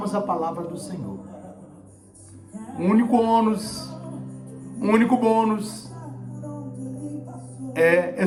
a palavra do Senhor. O único bônus é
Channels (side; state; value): both; identical; correlation 1.00